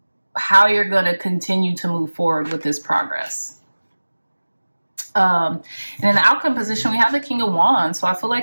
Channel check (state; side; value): inverted; both; correlation -1.00